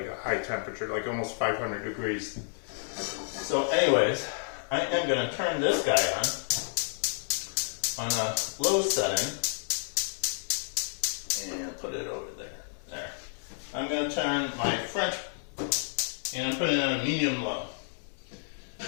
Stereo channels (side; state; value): right; silent; digital silence